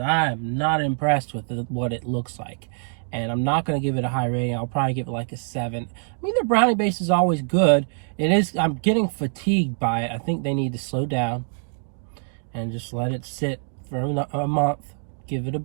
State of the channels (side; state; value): left; silent; digital silence